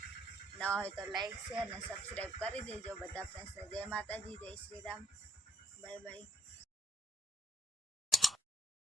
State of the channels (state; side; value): normal; both; correlation 0.75